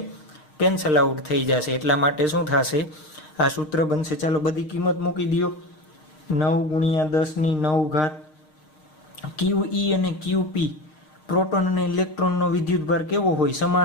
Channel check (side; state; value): right; late; 6.5 ms